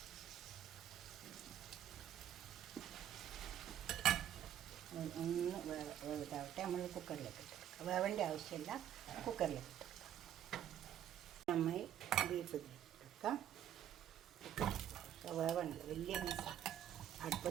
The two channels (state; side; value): quieter; left; 10.8 dB